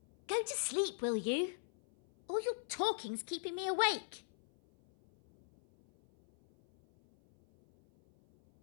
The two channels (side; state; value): right; silent; 51 dB below the other